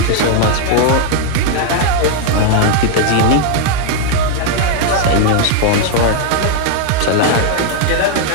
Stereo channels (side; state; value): both; different; correlation 0.00